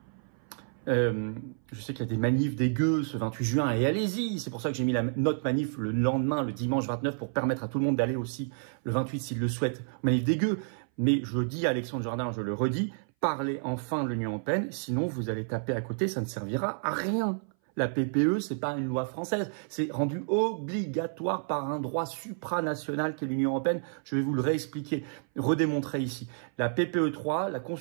Je sais qu'il y a des manifs des gueux ce 28 juin et allez-y. C'est pour ça que j'ai mis notre manif le lendemain, le dimanche 29, pour permettre à tout le monde d'aller aussi le 28 s'il le souhaite. Manif des gueux. Mais je dis à Alexandre Jardin, je le redis, parlez enfin de l'Union européenne, sinon vous allez taper à côté, ça ne servira à rien. La PPE, c'est pas une loi française, c'est rendu obligatoire par un droit supranational qu'est l'Union européenne. Je vais vous le réexpliquer, redémontrer ici. La PPE 3, la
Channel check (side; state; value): left; silent; 58 dB below the other